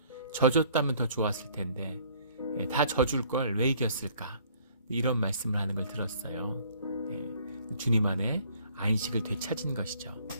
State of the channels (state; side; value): inverted; both; correlation -0.58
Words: 져줬다면 더 좋았을 텐데 다 져줄 걸 왜 이겼을까, 이런 말씀을 하는 걸 들었어요. 주님 안에 안식을 되찾은 것이죠.